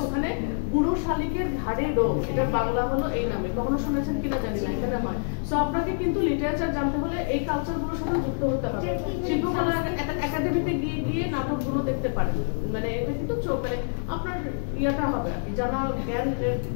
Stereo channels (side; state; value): right; silent; digital silence